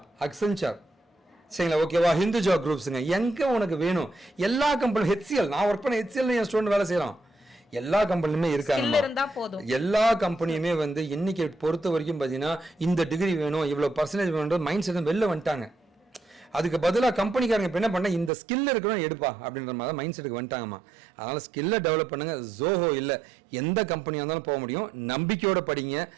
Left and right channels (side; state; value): left; drops out; at 18.3 s